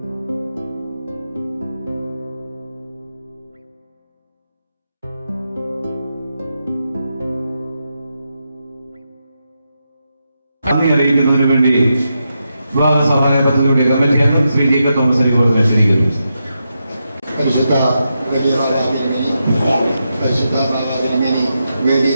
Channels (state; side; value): inverted; both; correlation -0.86